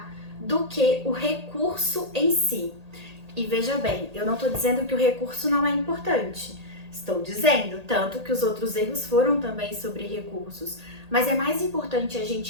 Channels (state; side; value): late; left; 1.8 ms